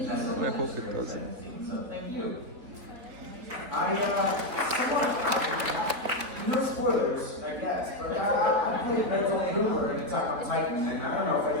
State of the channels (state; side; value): late; left; 4.1 ms